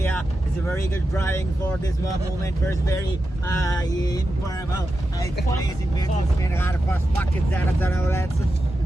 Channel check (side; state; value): both; normal; correlation 0.90